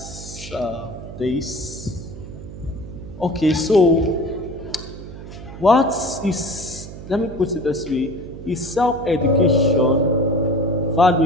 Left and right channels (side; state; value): right; noise; hum, 13 dB below the sound